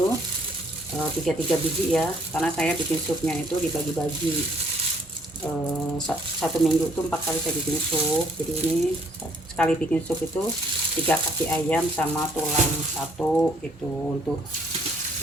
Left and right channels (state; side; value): normal; both; correlation 0.64